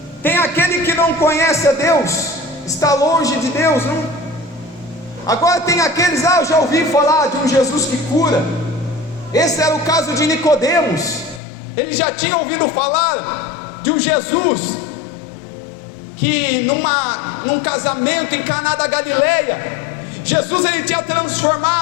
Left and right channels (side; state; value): right; drops out; at 11.4 s